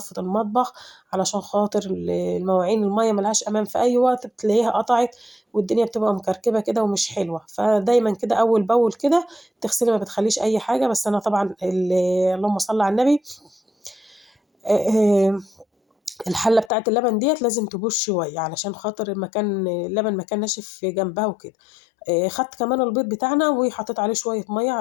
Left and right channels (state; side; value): drops out; right; at 16.7 s